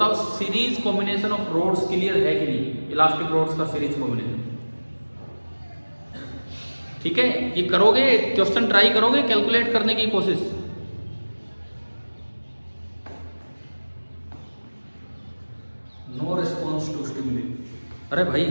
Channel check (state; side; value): inverted; both; correlation -1.00